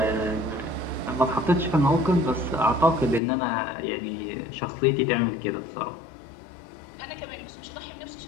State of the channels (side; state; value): right; drops out; at 3.2 s